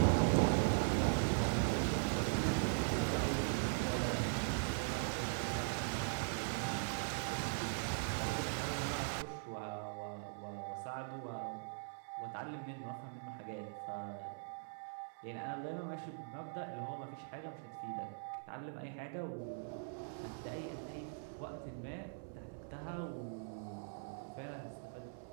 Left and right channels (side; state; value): left; silent; 50 dB below the other